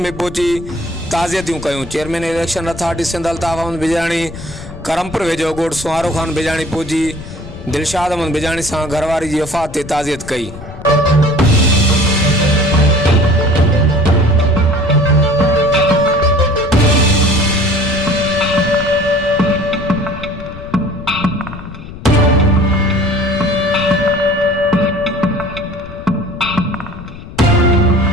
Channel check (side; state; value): left; noise; rumble, 14 dB below the sound